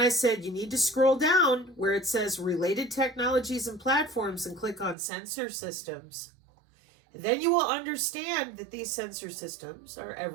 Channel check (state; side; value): drops out; left; at 5.0 s